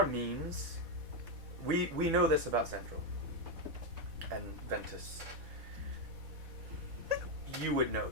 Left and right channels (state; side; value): late; left; 4.1 ms